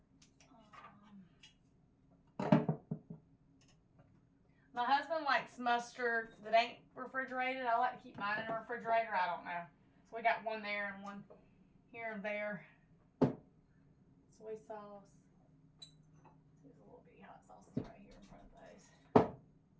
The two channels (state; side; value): identical; both; correlation 1.00